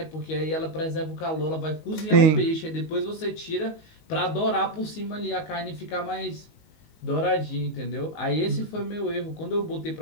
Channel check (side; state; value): right; late; 19 ms